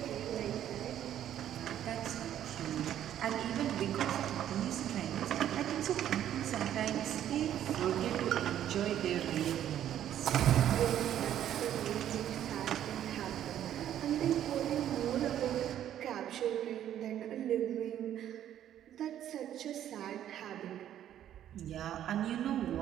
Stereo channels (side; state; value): left; quieter; 11.0 dB